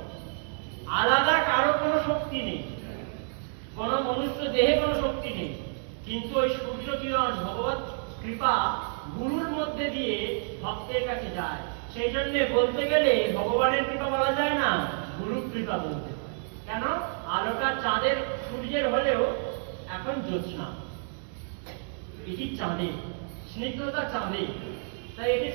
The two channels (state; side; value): silent; left; 59 dB below the other